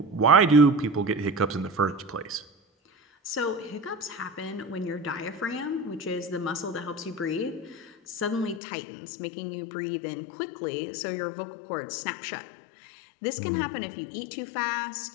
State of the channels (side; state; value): right; drops out; at 8.6 s